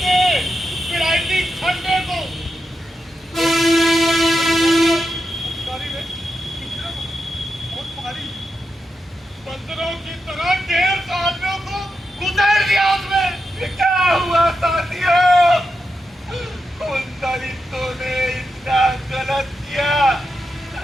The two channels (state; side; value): normal; both; correlation 0.87